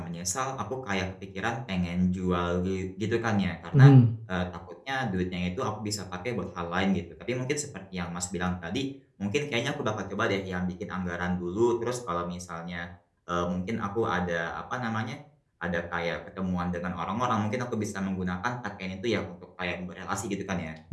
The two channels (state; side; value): identical; both; correlation 1.00